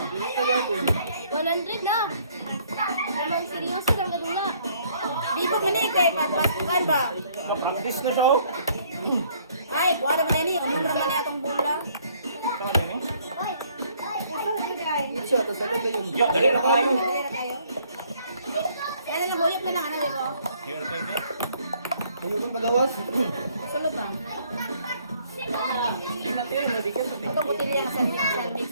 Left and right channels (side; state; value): both; inverted; correlation -0.63